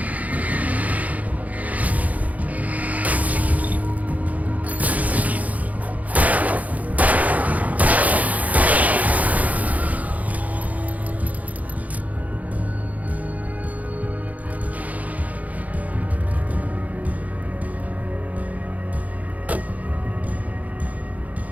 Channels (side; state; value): left; late; 0.074 ms